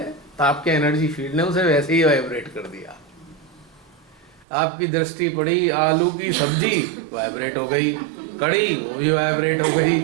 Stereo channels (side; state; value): left; drops out; at 4.5 s